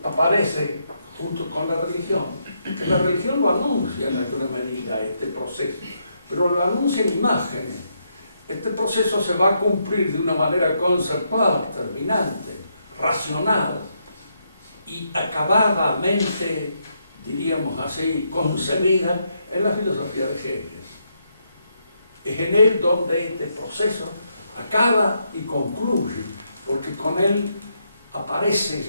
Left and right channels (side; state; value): both; inverted; correlation -0.78